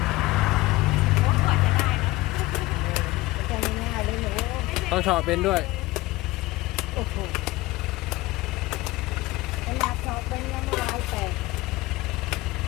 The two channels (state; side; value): quieter; right; 19.4 dB